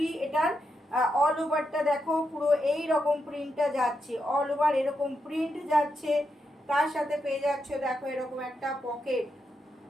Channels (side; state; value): both; normal; correlation 0.84